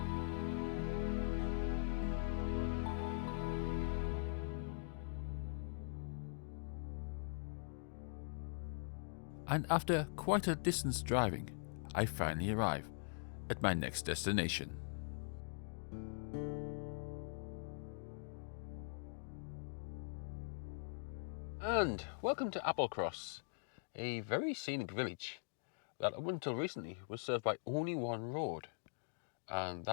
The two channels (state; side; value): silent; right; digital silence